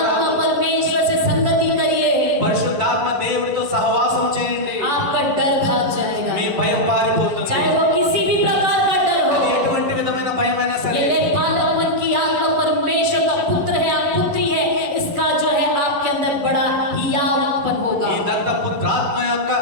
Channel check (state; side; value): late; left; 11 ms